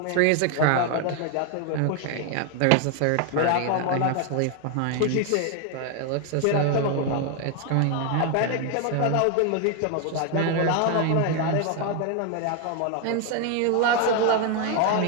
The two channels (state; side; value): different; both; correlation 0.01